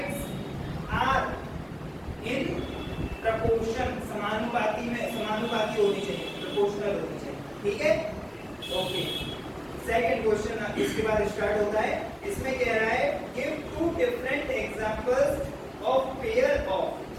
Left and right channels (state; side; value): identical; both; correlation 1.00